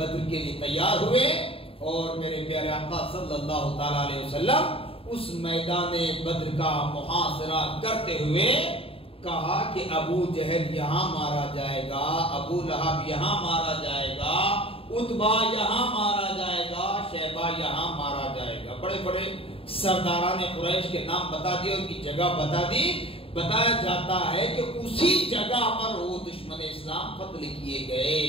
کے لیے تیار ہوئے، اور میرے پیارے آقا صلی اللہ تعالی علیہ وسلم اس میدان بدر کا محاصرہ کرتے ہوئے کہا کہ ابو جہل یہاں مارا جائے گا، ابو لہب یہاں مارا جائے گا، عتبہ یہاں مارا جائے گا، شیبہ یہاں مارا جائے گا۔ بڑے بڑے سرداران قریش کے نام بتا دیے، ان کی جگہ بتا دی۔ بتایا جاتا ہے کہ اسی جگہ پر وہ دشمن اسلام قتل کیے گئے،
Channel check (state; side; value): late; right; 0.27 ms